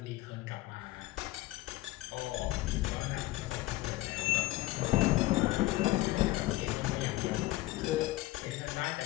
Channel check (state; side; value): quieter; right; 18.4 dB